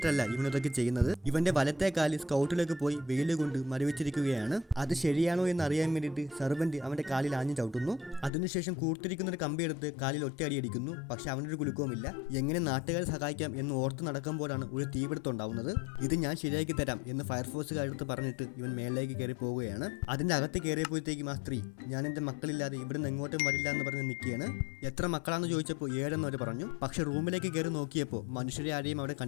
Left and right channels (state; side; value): drops out; right; at 8.3 s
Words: ഇവൻ ഇതൊക്കെ ചെയ്യുന്നത്. ഇവന്റെ വലത്തെ കാല് സ്കൗട്ടിലേക്ക് പോയി വെയിൽ കൊണ്ട് മരവിച്ചിരിക്കുകയാണ്. അത് ശരിയാണോ എന്ന് അറിയാൻ വേണ്ടിയിട്ട് സെർവന്റ് അവന്റെ കാലിൽ ആഞ്ഞു ചവിട്ടുന്നു. അതിനുശേഷം കൂർത്തിരിക്കുന്ന ഒരു കമ്പി എടുത്ത് കാലിൽ ഒറ്റയടി അടിക്കുന്നു. പക്ഷെ അവനൊരു കുലുക്കവുമില്ല. എങ്ങനെ നാട്ടുകാരെ സഹായിക്കാം എന്ന് ഓർത്ത് നടക്കുമ്പോഴാണ് ഒരു തീപിടുത്തം ഉണ്ടാവുന്നത്. ഇത് ഞാൻ ശരിയാക്കി തരാം എന്ന് ഫയർഫോഴ്സുകാരെടുത്ത് പറഞ്ഞിട്ട് ഇവൻ മേളിലേക്ക് കയറി പോവുകയാണ്. അതിന്റെ അകത്ത് കയറിയപ്പോഴത്തേക്കും ആ സ്ത്രീ, ഞാൻ എന്റെ മക്കളില്ലാതെ ഇവിടെ നിന്ന് എങ്ങോട്ടും വരില്ല എന്ന് പറഞ്ഞ് നിൽക്കുകയാണ്. എത്ര മക്കളാണെന്ന് ചോദിച്ചപ്പോൾ 7 അവർ പറഞ്ഞു. പക്ഷെ റൂമിലേക്ക് കയറി നോക്കിയപ്പോൾ മനുഷ്യരെ ആരെയും അവിടെ